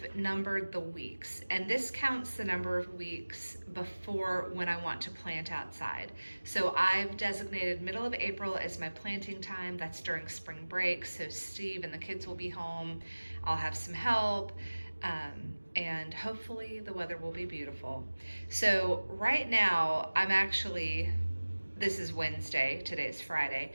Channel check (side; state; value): both; inverted; correlation -1.00